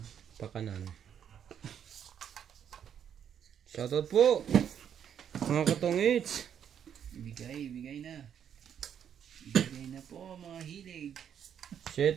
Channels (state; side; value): quieter; left; 8.8 dB